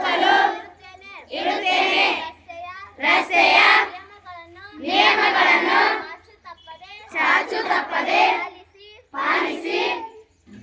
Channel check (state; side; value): identical; both; correlation 1.00